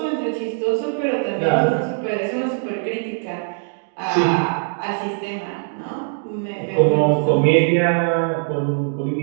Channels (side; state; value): left; silent; 65 dB below the other